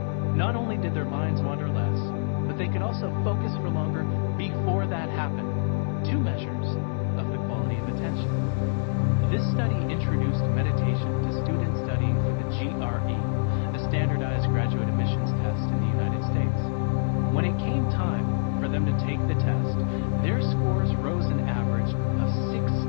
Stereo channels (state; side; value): silent; right; digital silence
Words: not only did their minds wander less, but they could also focus for longer before that happened. 2 measures of the quality of attention. This study introduced meditation to students studying for the GRE, a standardized graduate admissions test in the United States. When it came time for them to take the test, their scores rose an average of